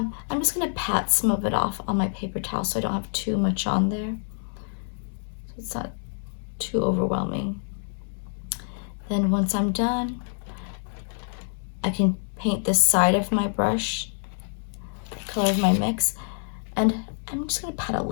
just going to pat some of it off on my paper towel so I don't have too much on there. So it's not too overwhelming. Then once I'm done, I can paint the side of my brush color of my mix. And I'm just gonna pat a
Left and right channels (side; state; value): right; silent; digital silence